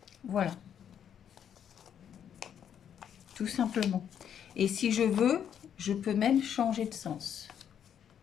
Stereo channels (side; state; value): right; quieter; 8.9 dB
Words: Voilà. Tout simplement. Et si je veux, je peux même changer de sens.